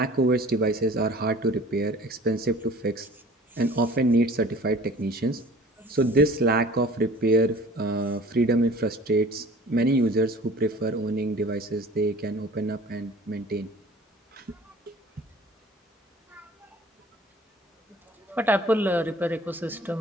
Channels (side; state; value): both; normal; correlation 0.47